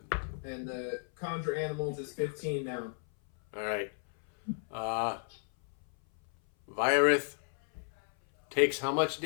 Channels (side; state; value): right; silent; 56 dB below the other